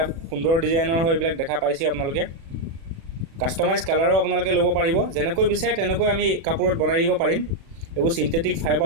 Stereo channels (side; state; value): left; late; 36 ms